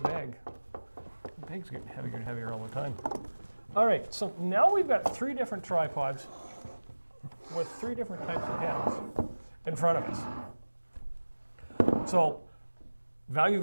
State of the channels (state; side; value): inverted; both; correlation -1.00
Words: bag. The bag's getting heavier and heavier all the time. All right, so now we've got 3 different tripods with 3 different types of heads in front of us. So, Value